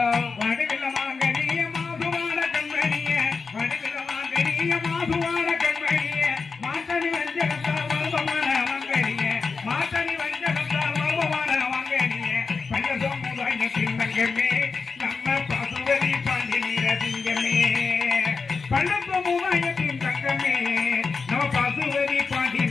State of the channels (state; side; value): quieter; right; 4.8 dB